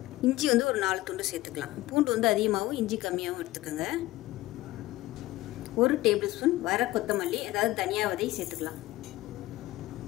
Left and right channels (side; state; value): right; quieter; 17.7 dB